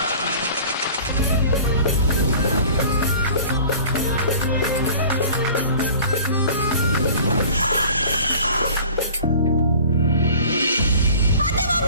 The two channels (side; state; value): both; inverted; correlation -0.45